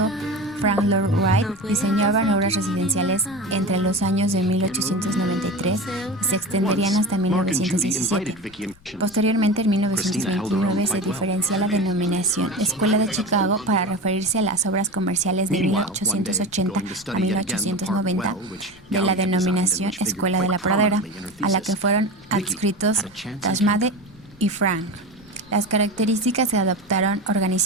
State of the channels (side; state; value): left; noise; rumble, 27 dB below the sound